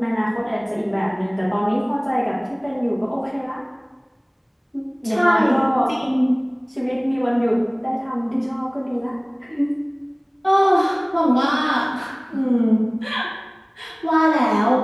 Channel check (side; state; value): both; identical; correlation 1.00